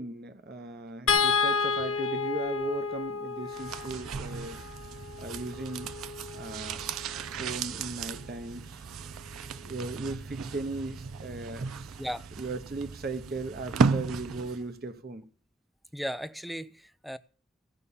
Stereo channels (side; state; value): both; normal; correlation 0.41